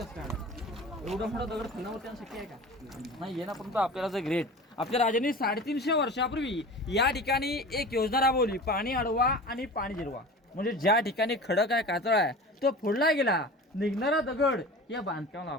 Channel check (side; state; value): both; normal; correlation 0.36